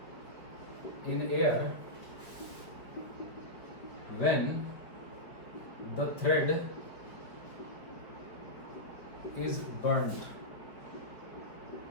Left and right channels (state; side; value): late; right; 5.0 ms